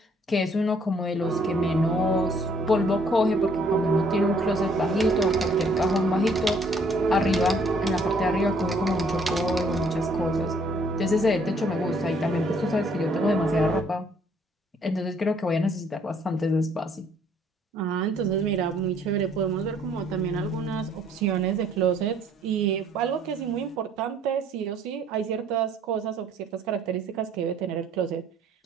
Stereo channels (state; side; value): normal; both; correlation 0.63